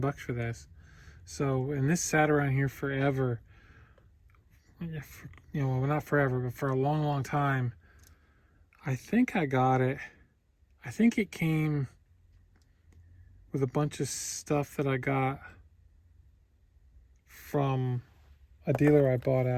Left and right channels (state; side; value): identical; both; correlation 1.00